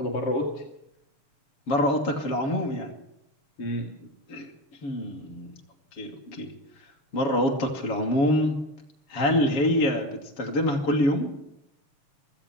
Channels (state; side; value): late; right; 7.1 ms